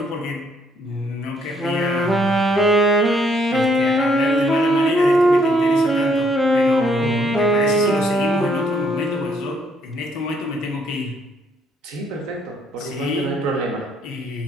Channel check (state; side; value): normal; both; correlation 0.69